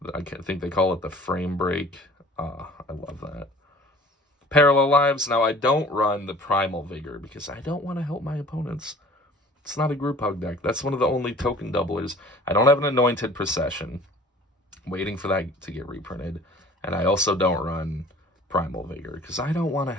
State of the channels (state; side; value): normal; both; correlation 0.48